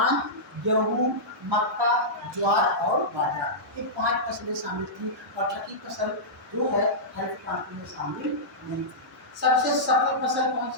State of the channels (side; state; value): both; normal; correlation -0.13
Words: गेहूं, मक्का, ज्वार और बाजरा, ये 5 फसलें शामिल थी और छठी फसल जो है हरित क्रांति में शामिल नहीं थी। सबसे सफल फसल कौन